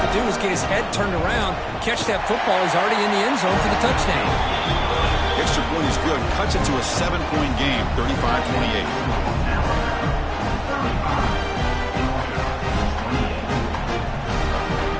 to do is get his head turned around, catch that football. He's already in the end zone for the touchdown. Extra point is good. Cuts it to a 7-point game, 35-28.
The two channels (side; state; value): both; identical; correlation 1.00